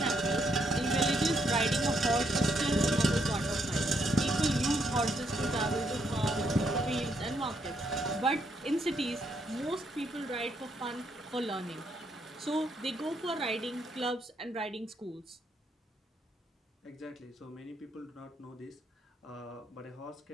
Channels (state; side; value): normal; both; correlation 0.75